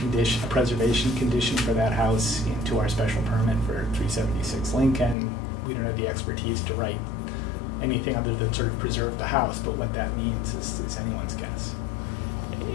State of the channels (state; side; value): drops out; right; at 5.2 s